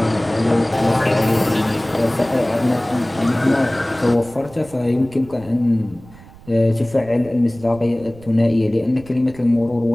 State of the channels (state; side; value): noise; right; rumble, 21 dB below the sound